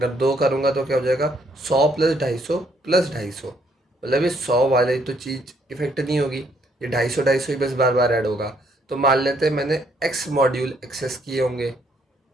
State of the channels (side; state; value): both; normal; correlation 0.69